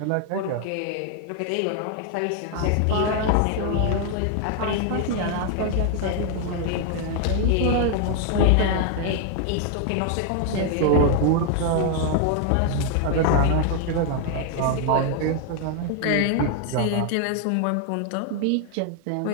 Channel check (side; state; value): both; different; correlation 0.00